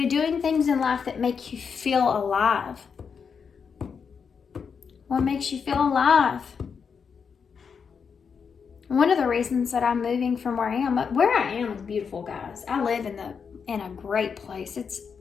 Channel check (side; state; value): right; quieter; 6.2 dB